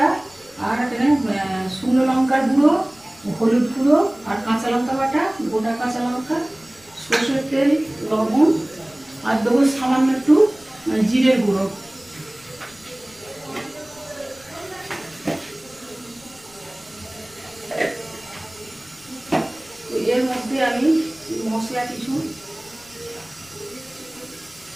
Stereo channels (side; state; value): left; noise; rumble, 27 dB below the sound